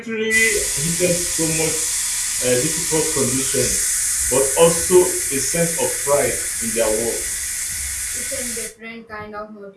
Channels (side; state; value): both; identical; correlation 1.00